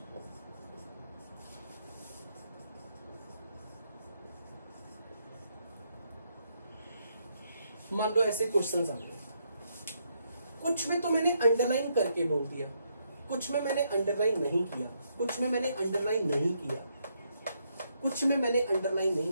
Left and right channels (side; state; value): both; inverted; correlation -0.76